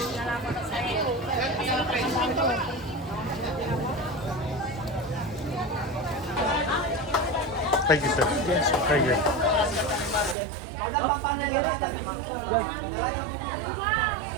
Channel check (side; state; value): left; drops out; at 10.4 s